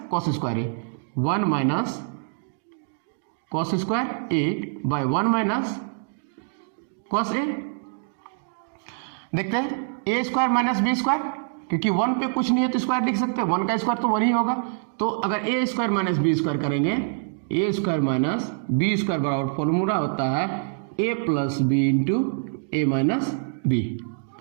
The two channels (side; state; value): left; silent; digital silence